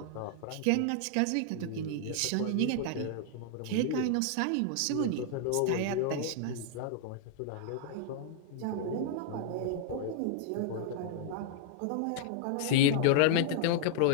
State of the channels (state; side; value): different; both; correlation -0.01